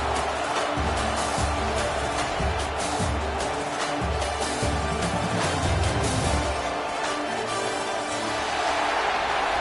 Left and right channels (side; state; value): both; identical; correlation 1.00